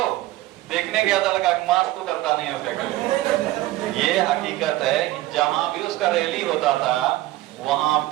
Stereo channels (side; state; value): left; quieter; 16.8 dB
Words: देखने गया था, लगा मास्क तो करता नहीं है उसका। ये हकीकत है कि जहां भी उसका रैली होता था वहां